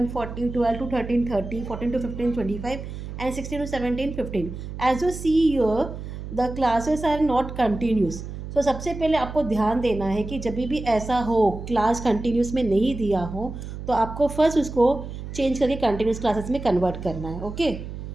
40, 12 to 13, 30, 14 to 15, 25, and 16 to 17, 15. As you see here, the classes are not continuous. So सबसे पहले आपको ध्यान देना है कि जब भी ऐसा हो क्लास कंटिन्यूस में नहीं दिया हो तो आपको फर्स्ट उसको चेंज करके कंटिन्यूस क्लासेस में कन्वर्ट करना है. ओके,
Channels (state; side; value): noise; right; hum, 9 dB below the sound